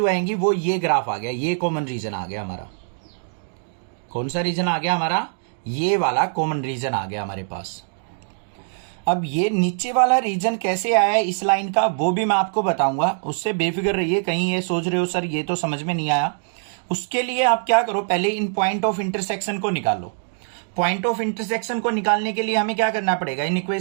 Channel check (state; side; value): silent; left; 64 dB below the other